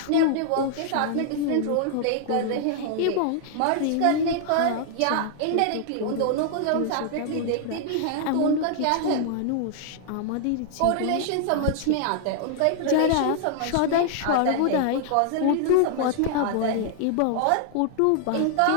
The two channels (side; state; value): both; different; correlation -0.01